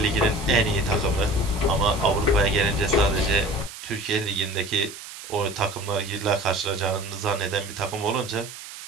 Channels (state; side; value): noise; right; hiss, 13 dB below the sound